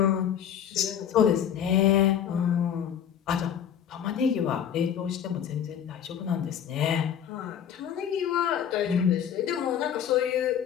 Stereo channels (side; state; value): right; quieter; 9.0 dB